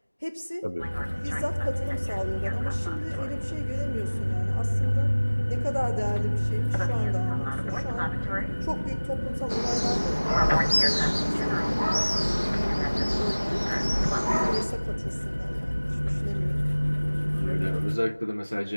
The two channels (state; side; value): inverted; both; correlation -1.00